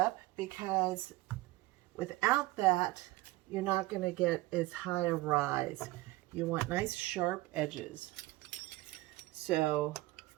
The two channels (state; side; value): quieter; left; 19.3 dB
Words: because without that, you're not going to get as high a rise. You want nice sharp edges. So